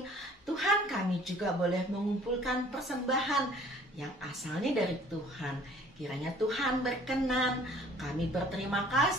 Tuhan, kami juga boleh mengumpulkan persembahan yang asalnya dari Tuhan. Kiranya Tuhan berkenan. Kami berterima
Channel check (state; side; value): normal; both; correlation 0.54